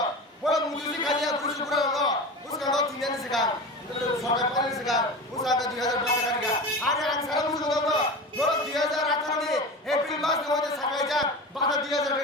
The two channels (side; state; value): both; normal; correlation 0.30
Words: বড় মুজুরি খালিয়া বুরুসুপুরা ন उसका नो 3 ने सिखा सरकार पानी सिखा उसका 2000 টাকা का আরে আং সারা মুজুরি ন বড় 2018 নি এপ্রিল মাস নে হতে সাকাই যা বাতা 2000